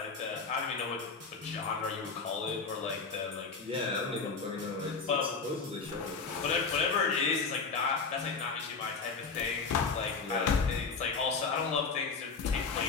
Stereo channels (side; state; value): right; quieter; 4.9 dB